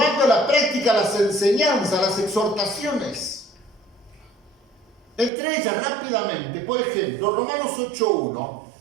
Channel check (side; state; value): left; drops out; at 5.3 s